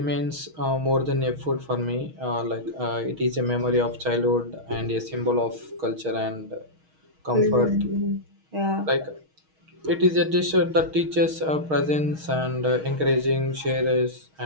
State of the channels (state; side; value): late; left; 6.4 ms